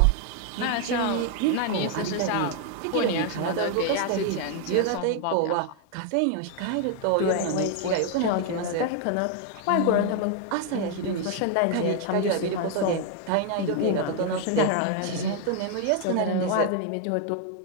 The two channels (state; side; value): different; both; correlation 0.00